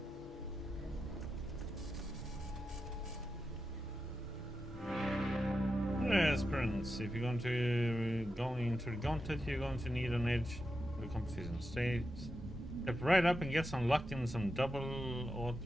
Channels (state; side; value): normal; both; correlation 0.89